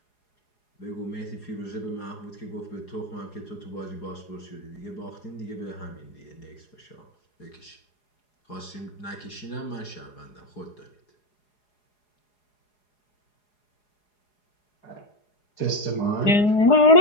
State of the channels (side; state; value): right; late; 4.8 ms